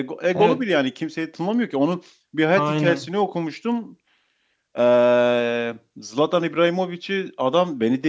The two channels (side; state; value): both; identical; correlation 1.00